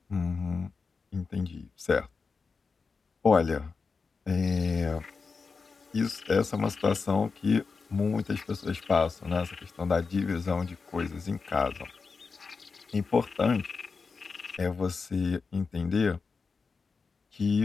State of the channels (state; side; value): quieter; right; 4.8 dB